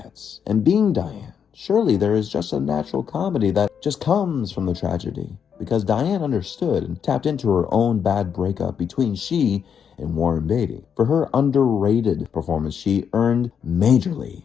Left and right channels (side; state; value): right; quieter; 7.5 dB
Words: And being Diane, surely there is just a natural comedy that just comes from the tragedy. Because Diane understood and tapped into her own bad breakup between she and Warren Beatty. For her underrated performance, she earned majorly